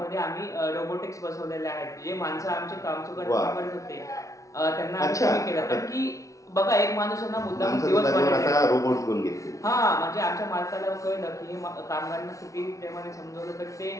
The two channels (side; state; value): right; late; 0.16 ms